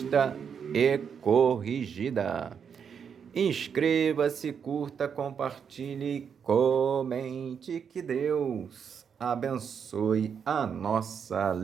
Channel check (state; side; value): quieter; left; 7.1 dB